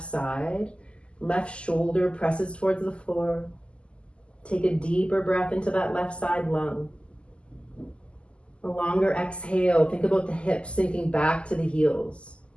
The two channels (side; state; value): right; late; 0.053 ms